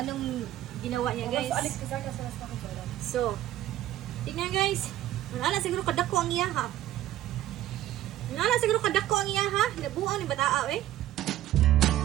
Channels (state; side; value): quieter; left; 13.5 dB